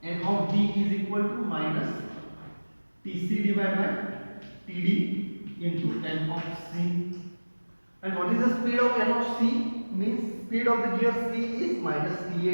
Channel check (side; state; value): both; inverted; correlation -1.00